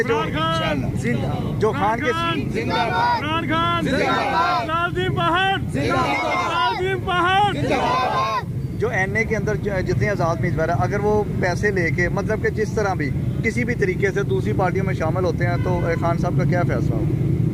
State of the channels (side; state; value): both; identical; correlation 1.00